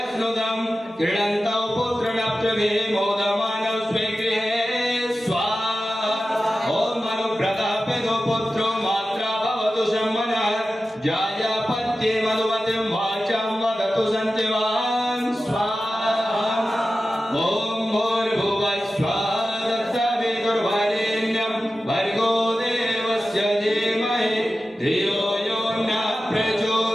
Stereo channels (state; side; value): normal; both; correlation 0.94